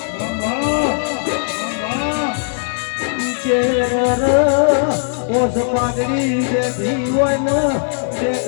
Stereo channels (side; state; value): right; silent; 67 dB below the other